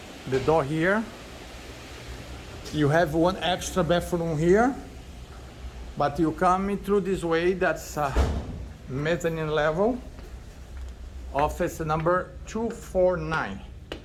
door here, you have one extra bathroom here, but you come through this way. That's a mezzanine level, office number 249.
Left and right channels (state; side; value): identical; both; correlation 1.00